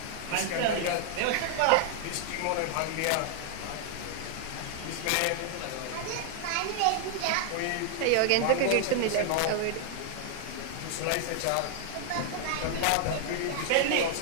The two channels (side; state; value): both; different; correlation 0.00